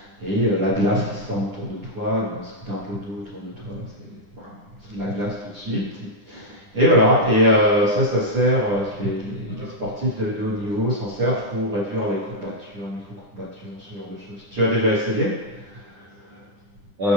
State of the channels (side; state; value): left; late; 10 ms